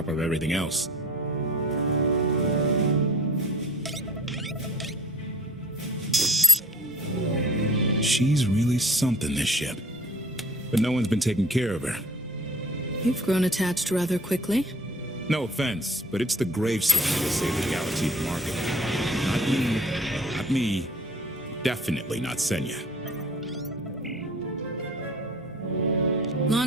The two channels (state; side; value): noise; right; hum, 30 dB below the sound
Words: of everything else. She's really something, this ship. But no one's been taking care of her. You've grown attached rather quickly. No offense, but it's the gravestone that'll save the galaxy from Arkham. Not you, not me, definitely not Senya.